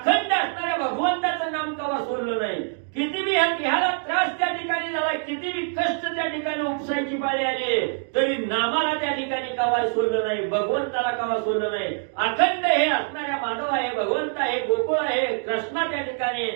असणाऱ्या भगवंताचं नाम कवा सोडलं नाही. किती बी ह्याला त्रास त्या ठिकाणी झाला, किती बी कष्ट त्या ठिकाणी उपसायची पाळी आली, तरी नामाला त्या ठिकाणी कवा सोडलं नाही, भगवंताला कवा सोडलं नाही. अखंड हे असणाऱ्या माधव आहे, भगवंत आहे, गोकुळ आहे, कृष्णा त्या ठिकाणी,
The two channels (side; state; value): left; silent; digital silence